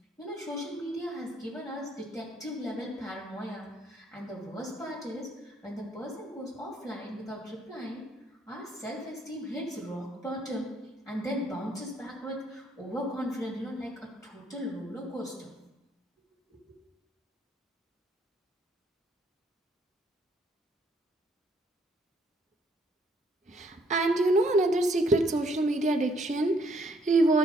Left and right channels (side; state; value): both; normal; correlation 0.67